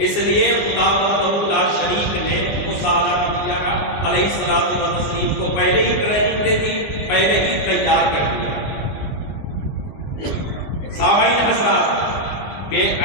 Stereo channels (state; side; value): late; right; 20 ms